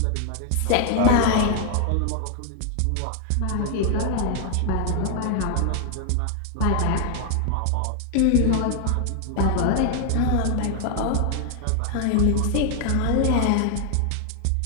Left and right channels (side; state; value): both; different; correlation 0.00